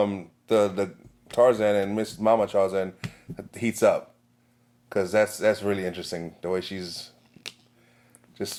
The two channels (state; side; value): identical; both; correlation 1.00